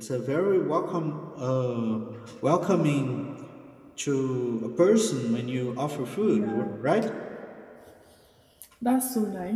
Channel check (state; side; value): identical; both; correlation 1.00